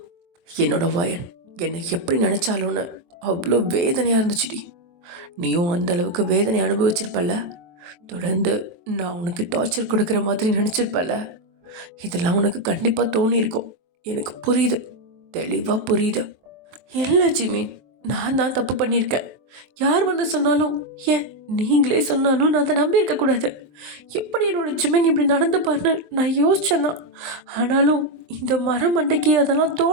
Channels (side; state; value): left; late; 23 ms